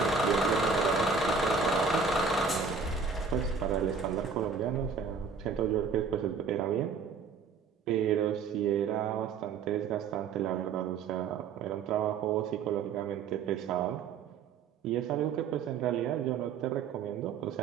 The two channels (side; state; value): left; quieter; 5.5 dB